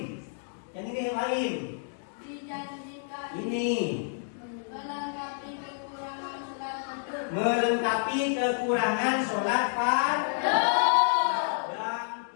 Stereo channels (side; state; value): right; silent; digital silence